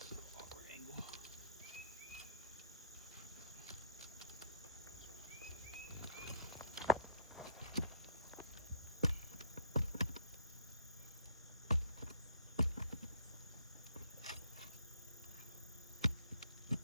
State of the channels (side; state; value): both; inverted; correlation -0.56